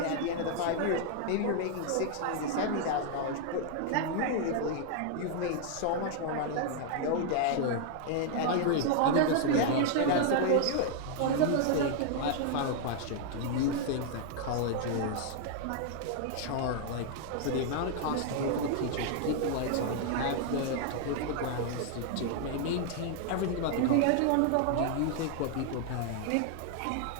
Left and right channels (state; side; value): different; both; correlation 0.00